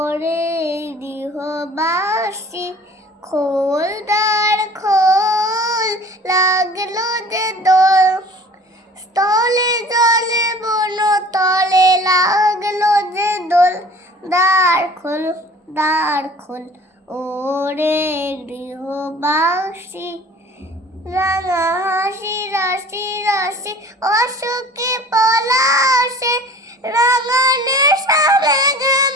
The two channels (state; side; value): normal; both; correlation 0.46